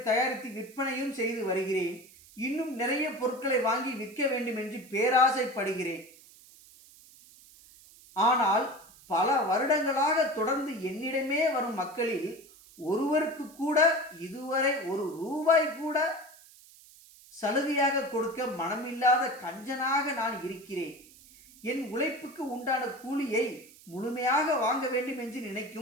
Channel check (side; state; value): right; noise; hiss, 23 dB below the sound